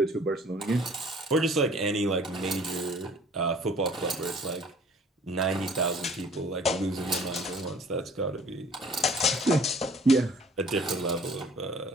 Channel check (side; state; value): both; normal; correlation 0.52